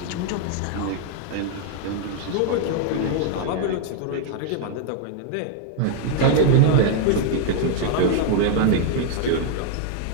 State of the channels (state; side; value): different; both; correlation 0.00